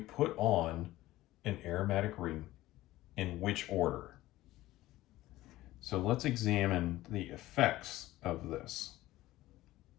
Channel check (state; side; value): quieter; right; 16.6 dB